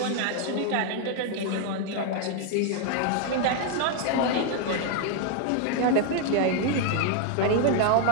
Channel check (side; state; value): both; different; correlation 0.00